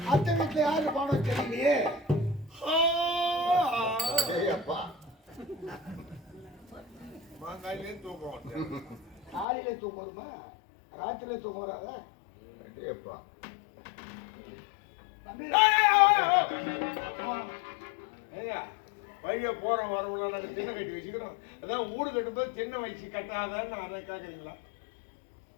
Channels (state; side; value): drops out; right; at 9.5 s